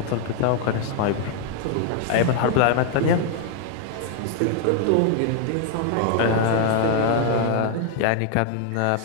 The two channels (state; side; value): different; both; correlation 0.00